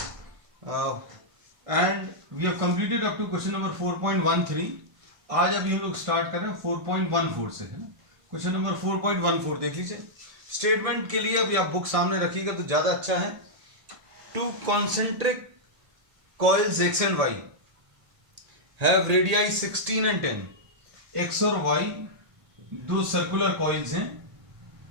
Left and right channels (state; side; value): late; left; 1.5 ms